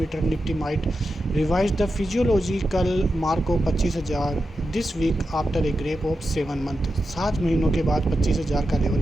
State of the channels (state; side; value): normal; both; correlation 0.89